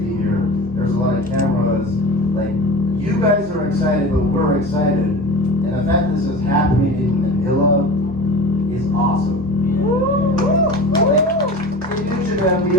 here. There's a lot of cameras. Like, you guys are excited, but we're excited. And the fact this is happening in Manila is awesome. Like, in New Japan, we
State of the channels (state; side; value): normal; both; correlation 0.34